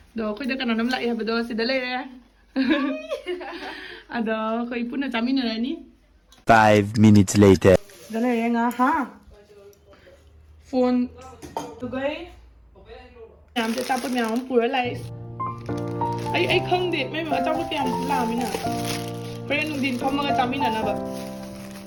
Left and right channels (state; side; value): identical; both; correlation 1.00